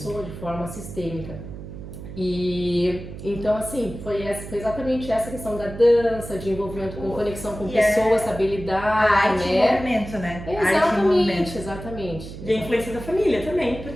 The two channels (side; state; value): right; noise; hum, 12 dB below the sound